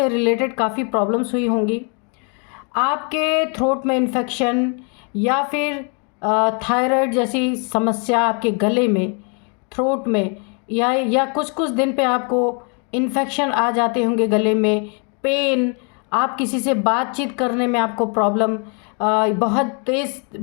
रिलेटेड काफ़ी प्रॉब्लम्स हुई होंगी। आपके थ्रोट में इन्फेक्शन या फिर थायराइड जैसी समस्या, आपके गले में, थ्रोट में, या कुछ कुछ दिन पे आपको इन्फेक्शन आ जाते होंगे गले में, पेन, आप किसी से बातचीत करने में आपको प्रॉब्लम, बहुत तेज़,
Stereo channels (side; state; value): right; quieter; 37.4 dB